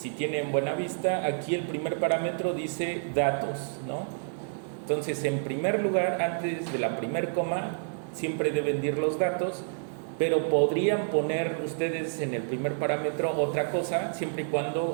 tienen buena vista, aquí el primer parámetro dice datos, ¿no? Entonces, en primer lugar, antes de la primer coma, siempre deben ir los datos, pero podrían poner ustedes en el primer parámetro otra cosa, siempre y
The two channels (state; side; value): silent; left; 59 dB below the other